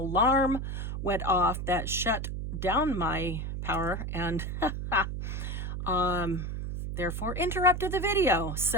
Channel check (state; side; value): noise; right; hum, 4 dB below the sound